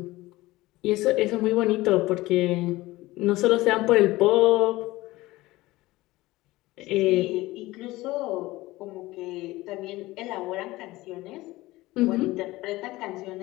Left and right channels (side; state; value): right; quieter; 18.9 dB